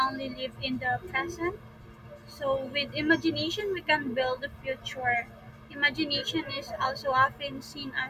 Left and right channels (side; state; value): both; identical; correlation 1.00